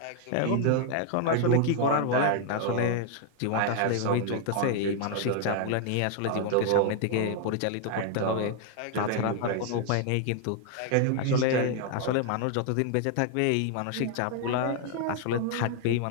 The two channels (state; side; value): different; both; correlation 0.00